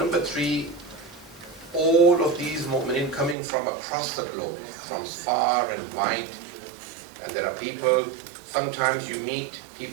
3, all of these mu'minin coming from across the globe, from far and wide, and there are people, sometimes you meet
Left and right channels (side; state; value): left; drops out; at 3.4 s